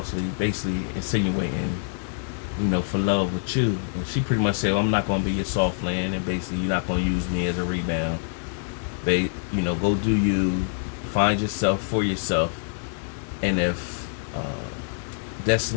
basically insinuating, for love with you. And she pretty much said, well, I'm not going to be your soft land, and basically you're not going to use me as a rebound. Go do you, find yourself for yourself, and if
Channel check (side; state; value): right; silent; digital silence